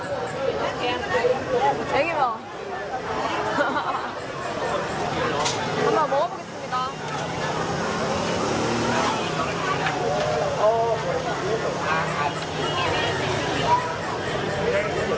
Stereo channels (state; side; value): identical; both; correlation 1.00